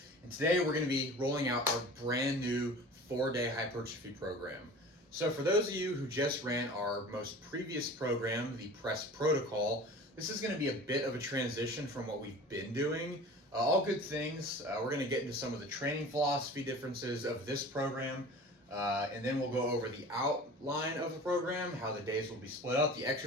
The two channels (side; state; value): both; normal; correlation 0.40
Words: and today we're going to be rolling out our brand new 4-day hypertrophy program. So for those of you who just ran our most previous program, the press protocol, this is going to be a bit of a transition from what we've been doing. All good things. We're going to get into some of the training philosophy differences of this program, and then we'll go over the outline of the program, how the days will be split up, the